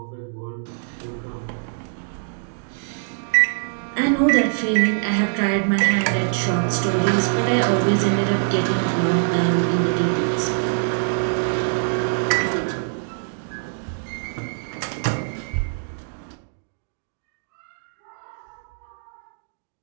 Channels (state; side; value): silent; left; digital silence